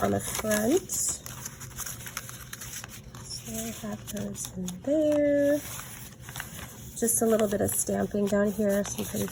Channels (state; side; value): identical; both; correlation 1.00